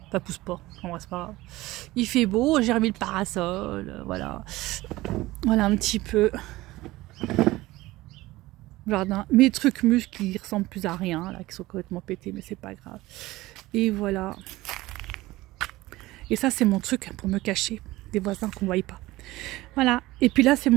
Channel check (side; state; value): left; quieter; 18.5 dB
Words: Ça pousse pas, en vrai c'est pas grave. Il fait beau, j'ai remis le parasol, voilà. Voilà un petit peu. Jardin. Mes trucs muscles qui ressemblent plus à rien, là, qui sont complètement pétés, mais c'est pas grave. Et voilà. Et ça c'est mon truc pour me cacher des voisins qu'on ne voit pas. Voilà. Et puis là c'est